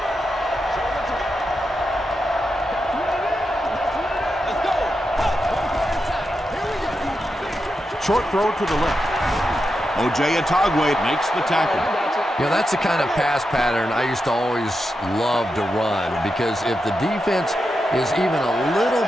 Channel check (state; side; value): normal; both; correlation 0.87